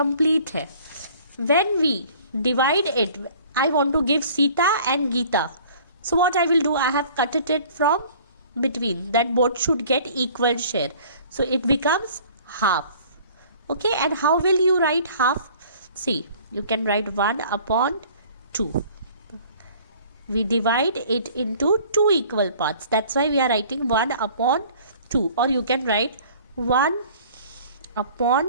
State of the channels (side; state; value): both; inverted; correlation -0.51